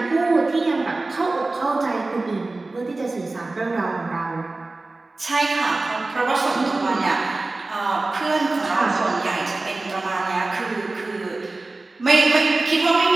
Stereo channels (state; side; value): quieter; left; 3.2 dB